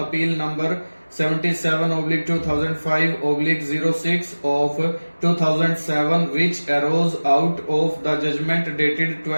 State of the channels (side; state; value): both; inverted; correlation -1.00